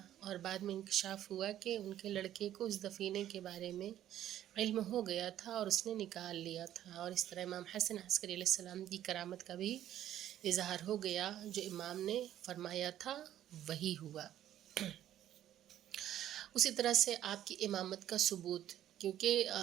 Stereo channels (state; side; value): quieter; left; 11.9 dB